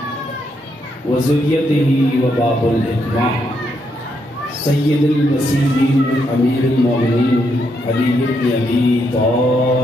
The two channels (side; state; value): both; normal; correlation 0.78